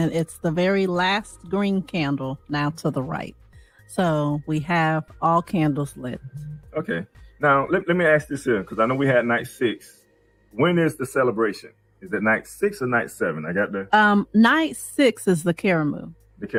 it's the very last green candle now to the right. So we have all candles lit. Okay. Now, let me ask this here, because I know we had night 6. When is the celebration? Is it night 6 or night 7? I got the... Night 6 is the Karamu. The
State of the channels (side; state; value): both; identical; correlation 1.00